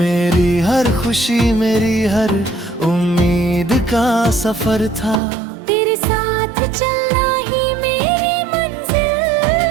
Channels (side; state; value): left; drops out; at 5.2 s